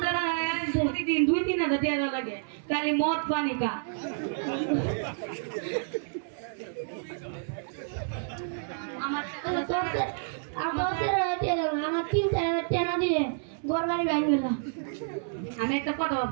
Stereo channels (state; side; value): silent; left; 58 dB below the other